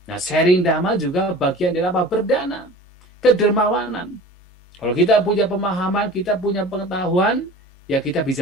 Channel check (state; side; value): normal; both; correlation 0.40